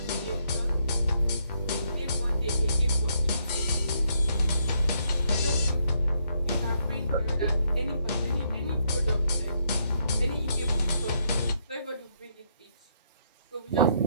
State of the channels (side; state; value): both; inverted; correlation -0.74